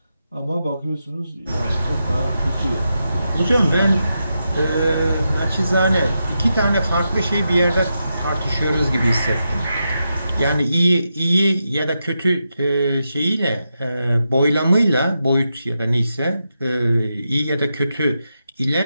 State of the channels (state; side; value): inverted; both; correlation -0.87